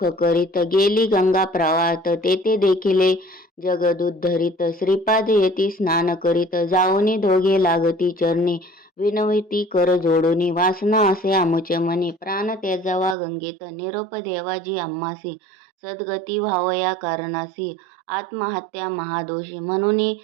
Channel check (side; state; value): left; drops out; at 13.2 s